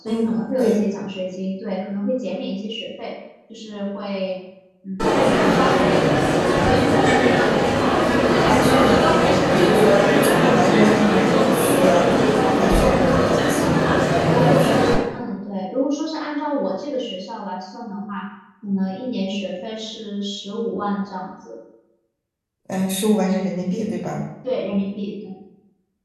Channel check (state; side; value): identical; both; correlation 1.00